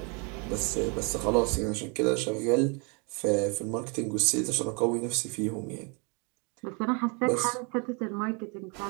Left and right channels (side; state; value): left; quieter; 33.4 dB